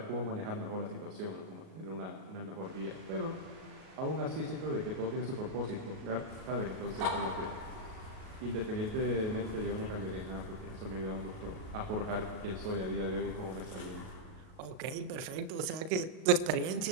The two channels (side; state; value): left; late; 38 ms